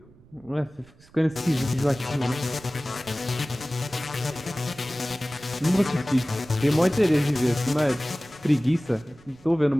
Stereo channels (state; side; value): noise; right; rumble, 27 dB below the sound